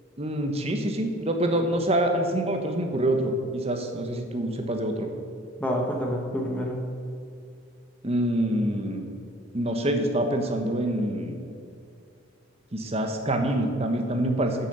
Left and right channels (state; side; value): normal; both; correlation 0.51